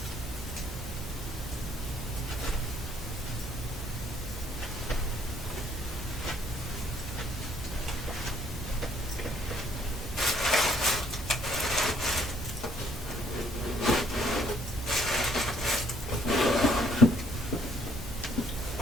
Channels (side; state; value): both; normal; correlation 0.64